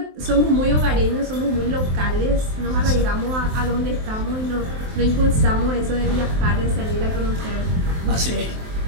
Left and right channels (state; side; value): late; left; 23 ms